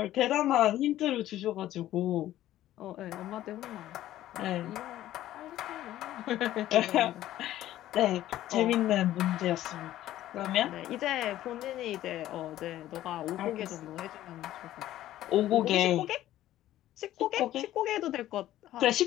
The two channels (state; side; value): quieter; right; 13.8 dB